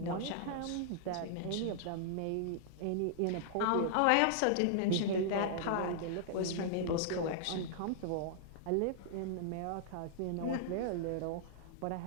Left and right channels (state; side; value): different; both; correlation -0.01